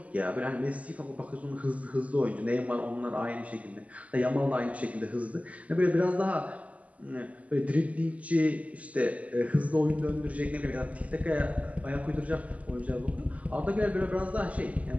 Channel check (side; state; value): left; late; 0.071 ms